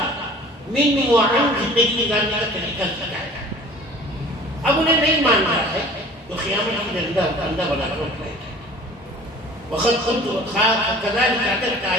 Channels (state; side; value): normal; both; correlation 0.46